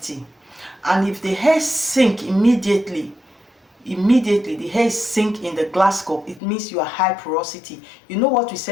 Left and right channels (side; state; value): right; drops out; at 6.4 s